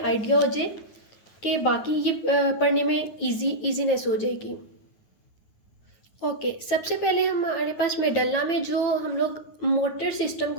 आइडिया हो जाए कि बाकी ये पढ़ने में इजीनेस हो जाएगी। ओके, सबसे पहले हमारे पास मेडल्ला में जो हम लोग मोटर सिस्टम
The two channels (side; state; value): right; late; 9.5 ms